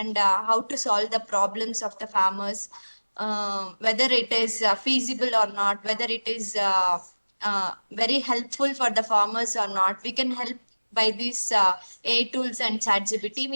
how to solve the problems of the farmers, whether it is feasible or not, whether it is very helpful for the farmers or not. We can help by these AI tools and ChatGPT.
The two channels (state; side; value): inverted; both; correlation -1.00